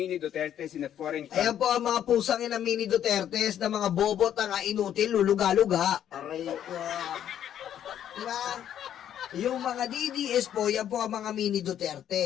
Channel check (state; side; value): quieter; right; 10.3 dB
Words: Dutertes in a foreign country. Ayan po ang mga pusang ina Mini Dutertes na mga bobo, tanga, inutil, luluga-luga. Aray ko. Diba? Yung mga DDS po, yan po ang mga Mini